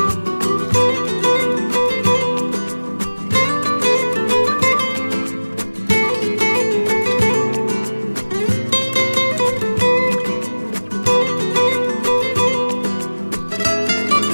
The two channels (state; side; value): inverted; both; correlation -1.00